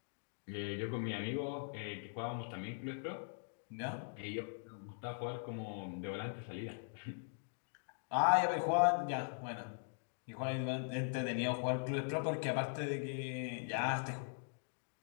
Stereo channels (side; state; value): right; silent; digital silence